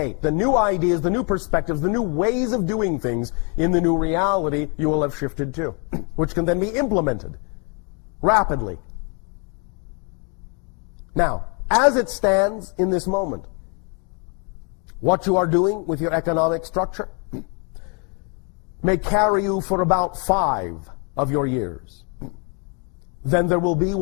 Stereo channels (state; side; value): quieter; right; 36.3 dB